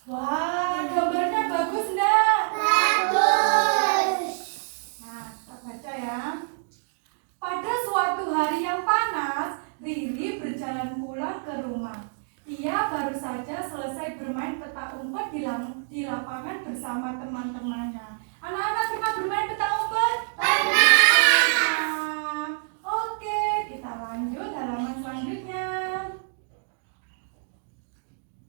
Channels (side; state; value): left; silent; digital silence